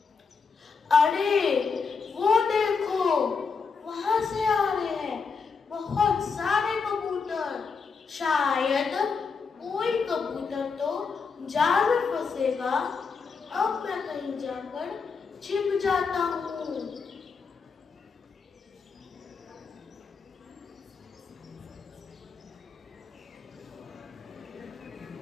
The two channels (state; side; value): quieter; right; 5.2 dB